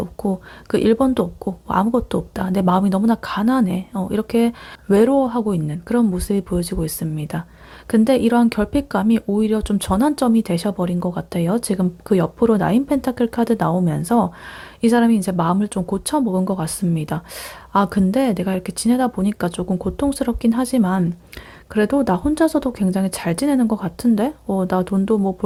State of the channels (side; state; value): both; identical; correlation 1.00